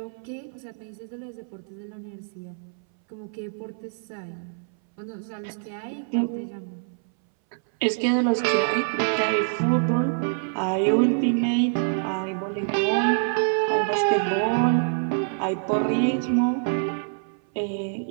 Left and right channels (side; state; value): left; silent; 60 dB below the other